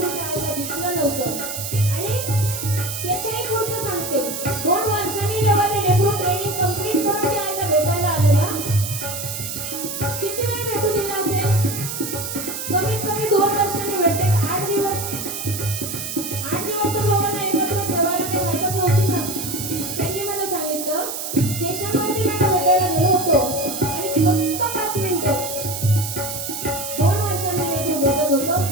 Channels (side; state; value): right; noise; hiss, 6 dB below the sound